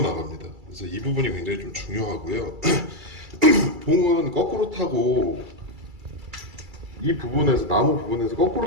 나갑니다. 그래서 이 부분이 굉장히 좀 중요하고요. 봉은 거꾸로 타고 이 부분에서 나무 부분에서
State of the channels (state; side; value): late; left; 2.3 ms